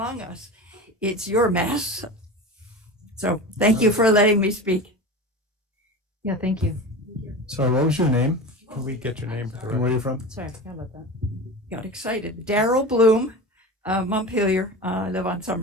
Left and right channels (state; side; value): normal; both; correlation 0.29